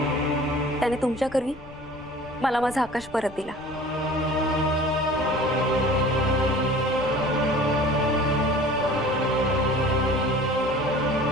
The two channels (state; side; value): noise; left; rumble, 20 dB below the sound